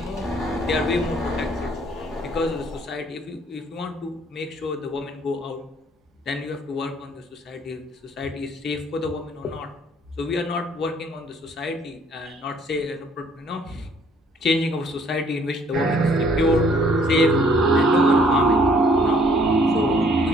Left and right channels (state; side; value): normal; both; correlation 0.61